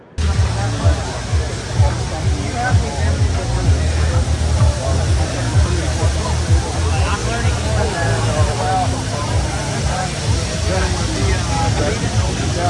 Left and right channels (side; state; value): both; identical; correlation 1.00